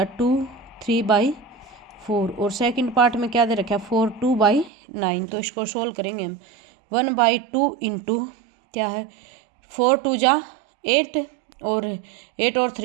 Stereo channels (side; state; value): left; drops out; at 4.7 s